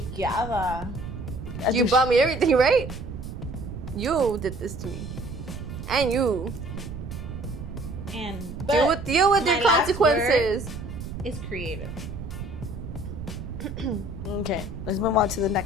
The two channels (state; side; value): noise; right; rumble, 9 dB below the sound